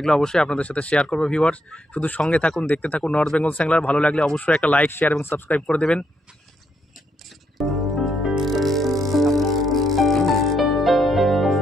অবশ্যই আপনাদের সাথে শেয়ার করবো। ভিউয়ার্স, শুধু সঙ্গে থাকুন, দেখতে থাকুন নর্থ বেঙ্গল স্যাংলার। ভালো লাগলে অবশ্যই একটা লাইক, শেয়ার এবং সাবস্ক্রাইব করে দেবেন।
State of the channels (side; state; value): both; normal; correlation 0.76